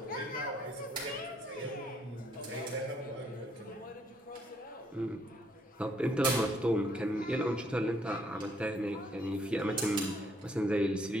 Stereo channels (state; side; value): normal; both; correlation 0.68